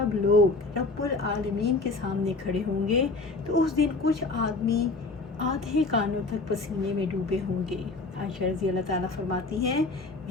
لوگ رب العالمین کے سامنے کھڑے ہوں گے تو اس دن کچھ آدمی آدھے کانوں تک پسینے میں ڈوبے ہوں گے۔ عائشہ رضی اللہ تعالیٰ فرماتی ہیں،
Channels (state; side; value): quieter; right; 3.5 dB